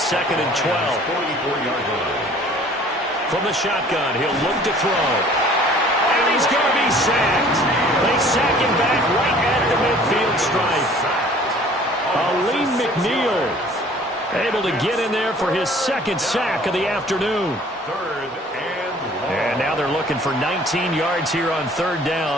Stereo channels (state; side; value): normal; both; correlation 0.52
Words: and 12. From the shotgun, he'll look to throw. And he's going to be sacked. They sack him back right at the midfield stripe. Aleem McNeil able to get in there for his 2nd sack of the afternoon. And now they're looking for 19 yards here on 3rd